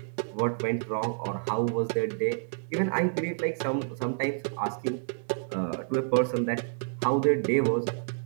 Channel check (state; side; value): silent; left; digital silence